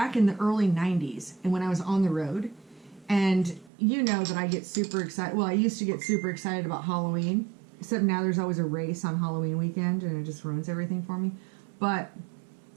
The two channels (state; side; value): drops out; left; at 3.7 s